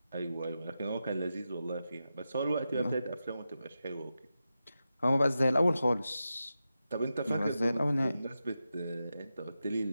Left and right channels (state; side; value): inverted; both; correlation -0.90